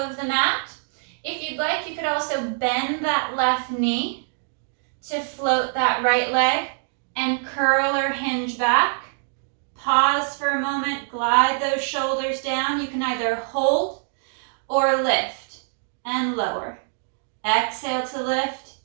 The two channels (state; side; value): silent; left; 62 dB below the other